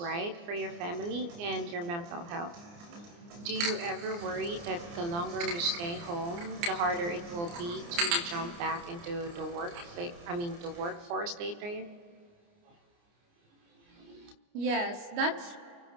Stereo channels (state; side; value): late; left; 29 ms